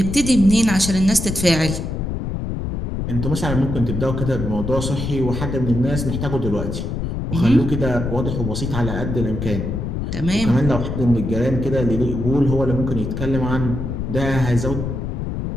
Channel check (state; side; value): noise; left; rumble, 4 dB below the sound